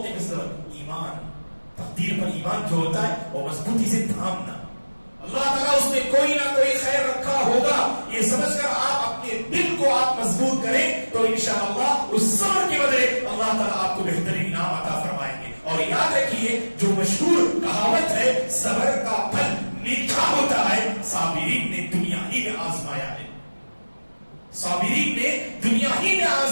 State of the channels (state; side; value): inverted; both; correlation -1.00